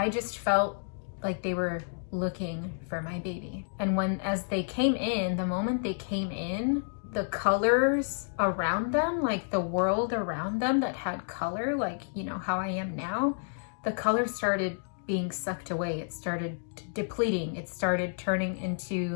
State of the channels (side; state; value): right; silent; digital silence